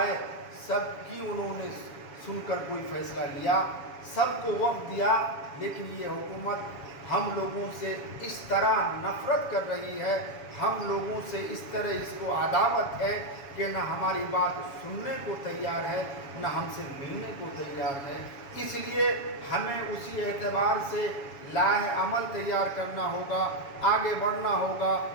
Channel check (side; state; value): right; late; 7.1 ms